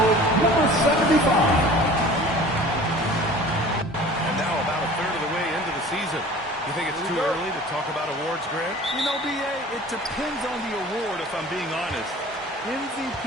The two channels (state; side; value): normal; both; correlation 0.44